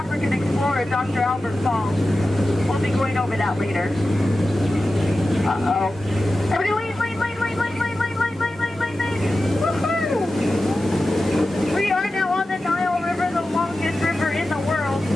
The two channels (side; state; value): both; normal; correlation 0.93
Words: explorer, Dr. Albert Falls. We'll be going over that later. Uh-oh. Everybody lean. Woohoo! We are now on the Nile River, the longest river in the world.